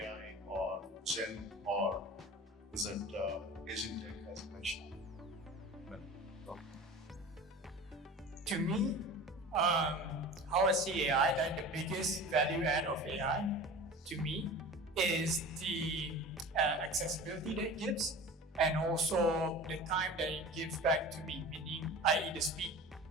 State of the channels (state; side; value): normal; both; correlation 0.37